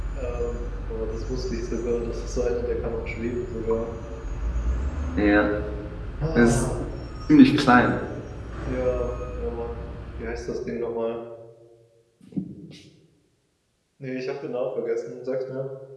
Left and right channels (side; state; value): both; identical; correlation 1.00